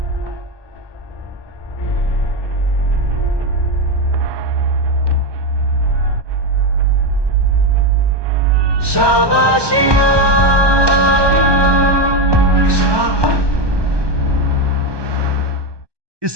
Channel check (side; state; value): left; late; 1.2 ms